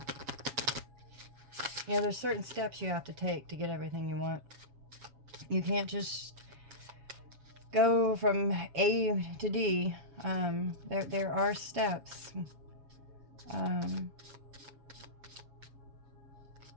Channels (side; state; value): left; late; 7.4 ms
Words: You know, there's certain steps you have to take to get everything you want. You can't just go from A to D. There are steps.